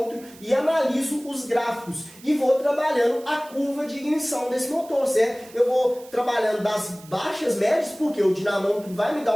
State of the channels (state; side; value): noise; right; hiss, 22 dB below the sound